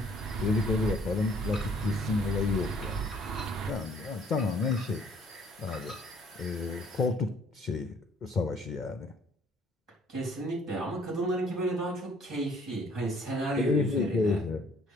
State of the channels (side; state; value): both; normal; correlation 0.60